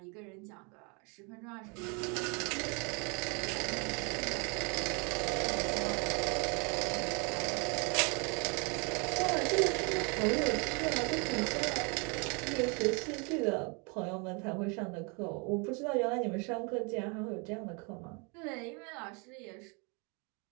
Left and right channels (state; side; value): quieter; left; 33.0 dB